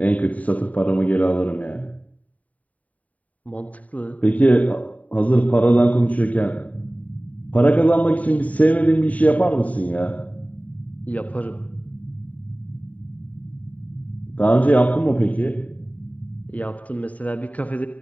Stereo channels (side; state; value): right; late; 0.070 ms